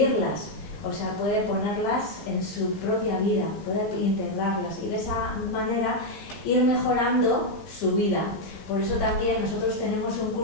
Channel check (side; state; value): right; late; 15 ms